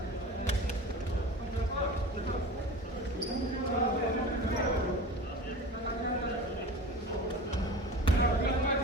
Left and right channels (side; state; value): both; normal; correlation 0.35